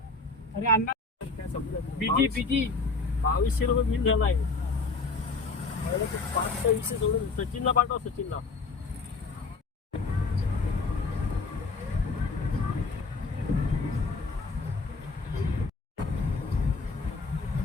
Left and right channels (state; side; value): quieter; right; 4.0 dB